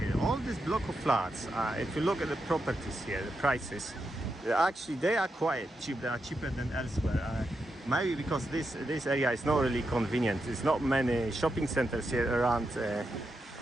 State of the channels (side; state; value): both; normal; correlation 0.86